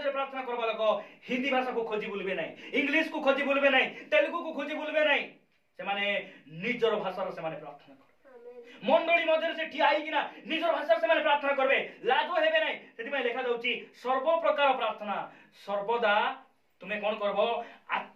रे प्रार्थना करबा लोक हिंदी भाषा को खोजी बुलबे नै इंग्लिश को खोजी बुलबे नै तेलुगु को खोजी बुलबे नै से माने निजर भाषा रे से माने प्रार्थना करबे मंडली मध्ये से ठिया आइ किना निजर भाषा से माने प्रार्थना करबे लाजो हेबे नै सेति में लिखा जाउची सर्व प्रकार प्रार्थना सर्वदा तुम्हें कौन करबो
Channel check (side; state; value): both; identical; correlation 1.00